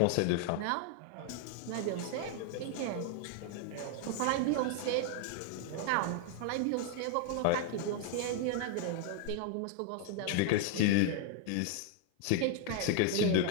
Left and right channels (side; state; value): both; different; correlation -0.01